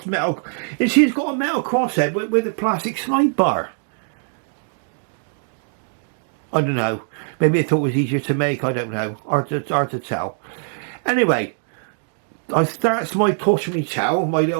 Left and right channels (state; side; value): silent; left; digital silence